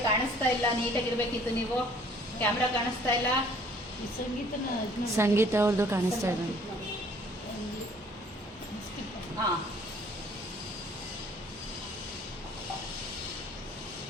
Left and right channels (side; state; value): both; normal; correlation 0.57